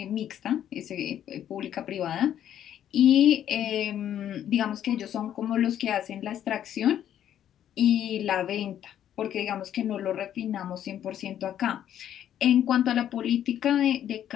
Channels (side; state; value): right; quieter; 10.5 dB